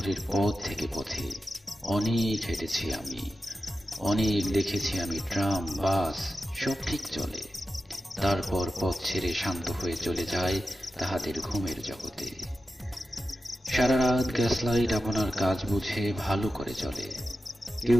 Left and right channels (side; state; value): both; normal; correlation 0.92